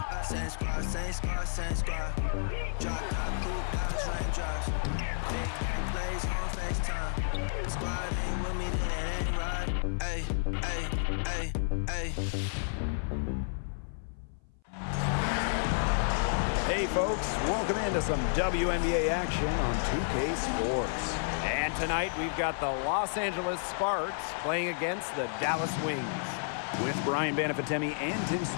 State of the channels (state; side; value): silent; right; 57 dB below the other